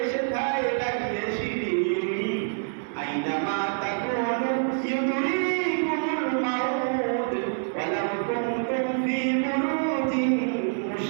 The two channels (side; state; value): left; silent; digital silence